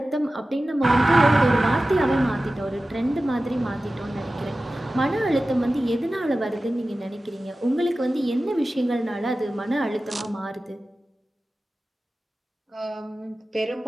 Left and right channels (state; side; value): normal; both; correlation 0.95